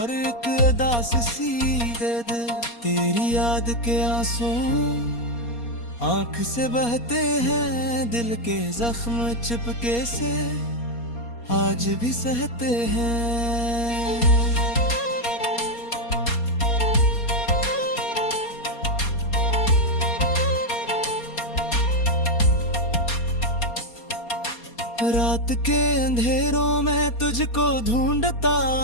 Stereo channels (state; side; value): late; right; 4.2 ms